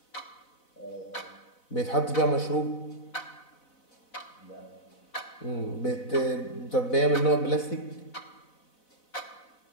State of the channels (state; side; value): late; right; 4.0 ms